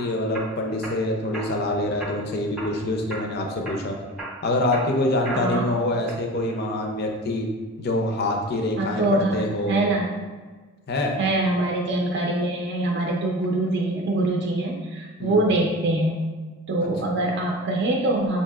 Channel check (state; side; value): normal; both; correlation 0.34